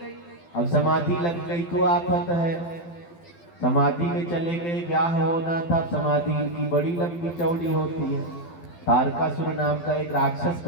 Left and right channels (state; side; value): late; right; 12 ms